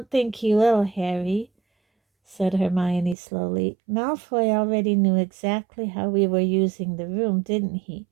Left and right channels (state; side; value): drops out; left; at 3.2 s